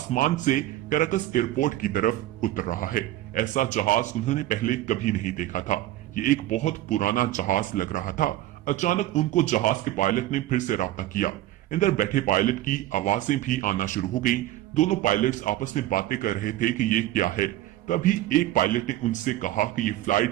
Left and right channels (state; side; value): quieter; left; 14.8 dB